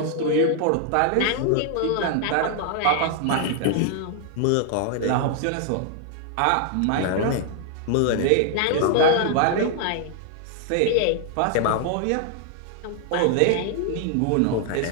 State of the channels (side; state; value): both; different; correlation 0.00